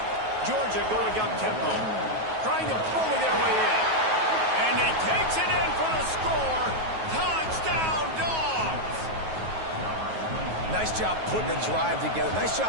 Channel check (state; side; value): late; left; 9.3 ms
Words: Georgia going up tempo, trying to bully their way in. And he takes it in for the score. Touchdown, Dogs! Nice job putting a drive together. Nice